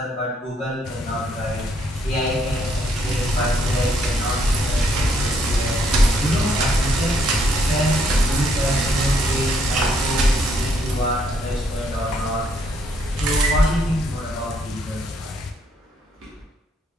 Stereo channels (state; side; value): normal; both; correlation 0.70